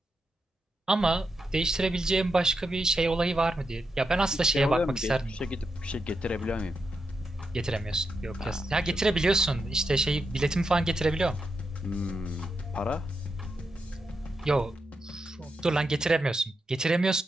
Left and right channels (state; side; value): normal; both; correlation 0.85